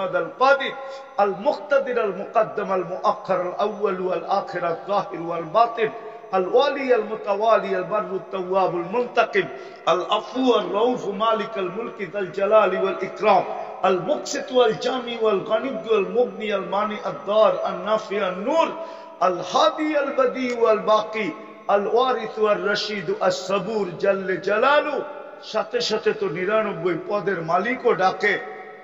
القادر المقتدر المقدم المؤخر الأول والآخر الظاهر والباطن الوالي المتوالي البر التواب المنتقم العفو الرؤوف مالك الملك ذا الجلال والإكرام المقسط والجامع والغني والمغني المانع الضار النافع النور الهادي البديع والباقي الوارث والرشيد الصبور جل جلاله। সাথে সাথে তো 99 পদের মালিকও ডাকে।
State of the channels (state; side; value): identical; both; correlation 1.00